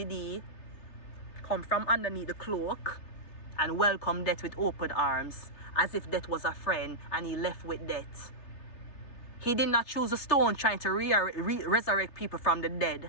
he come from underneath the cloak and welcome death with open arms, as if death was a friend, and he left with death. He did not choose a stone trying to resurrect people from the dead.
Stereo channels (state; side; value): late; right; 3.4 ms